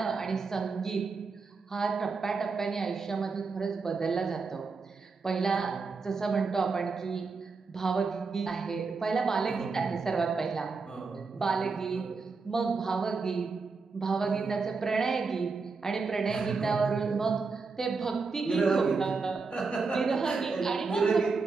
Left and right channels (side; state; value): left; quieter; 4.5 dB